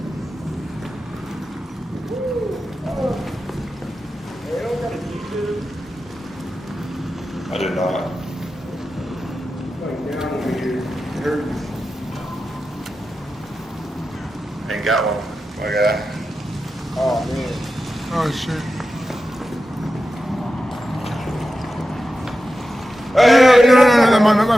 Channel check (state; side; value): normal; both; correlation 0.91